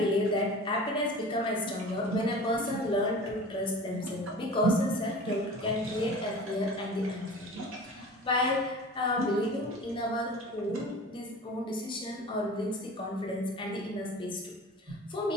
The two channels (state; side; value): normal; both; correlation 0.39